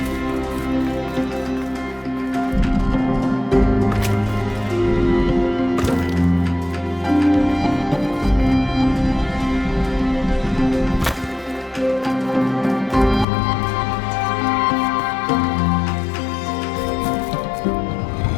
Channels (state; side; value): drops out; right; at 13.2 s